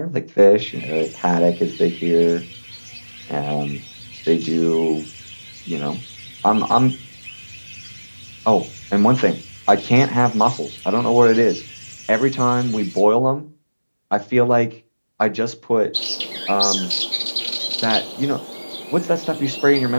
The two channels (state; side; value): inverted; both; correlation -1.00